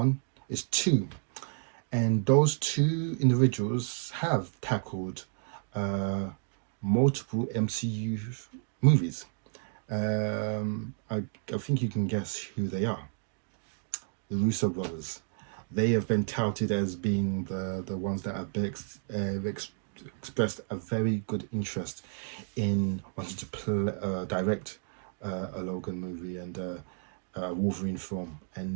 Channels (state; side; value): silent; left; 57 dB below the other